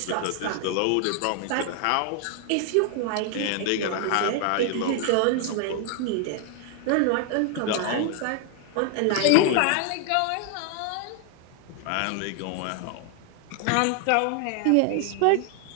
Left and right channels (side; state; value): both; different; correlation 0.00